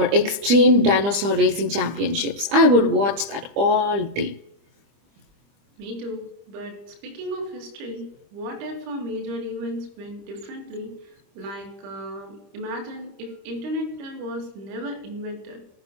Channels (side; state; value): left; late; 25 ms